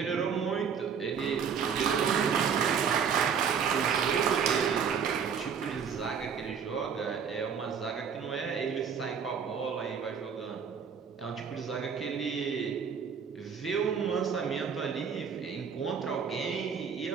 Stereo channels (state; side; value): quieter; left; 6.8 dB